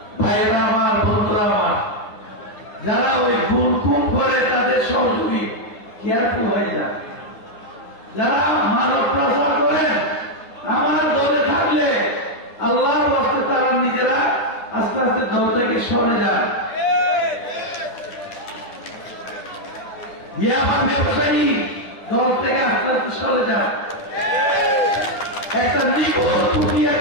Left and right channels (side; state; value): right; late; 9.7 ms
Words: ভাইরা আমার, বন্ধুরা আমার, যারা ওই গুম করে তাদের সহযোগী কেয়ারফুল হয়ে যায়। যারা মানব প্রচার করেন আমার দলে থাকলে আল্লাহর রাস্তায় তারা নিজেরা আস্তে আস্তে দল থেকে সরে যান। ইয়ামান ব্যবসায়ী দল থেকে আস্তে আস্তে সরে যান। একটা নিখুঁত দুনিয়া